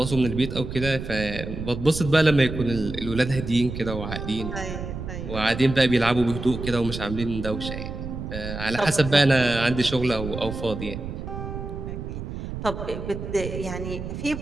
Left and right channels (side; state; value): right; noise; rumble, 7 dB below the sound